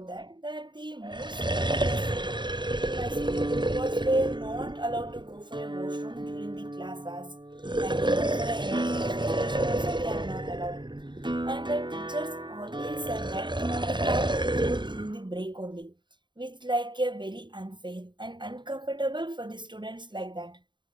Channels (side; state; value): left; late; 0.22 ms